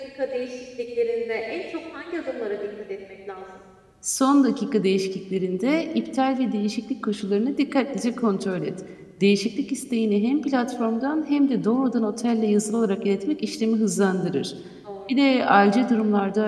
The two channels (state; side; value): identical; both; correlation 1.00